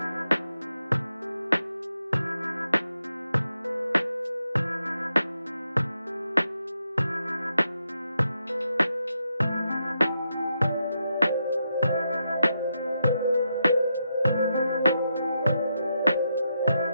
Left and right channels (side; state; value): both; inverted; correlation -0.83